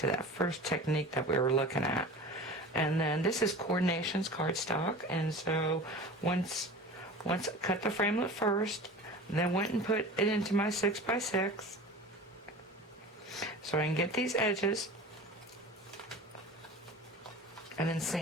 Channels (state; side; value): normal; both; correlation 0.36